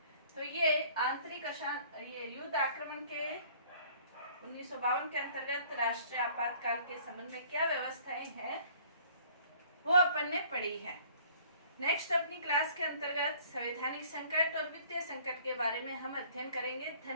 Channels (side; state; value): both; inverted; correlation -0.54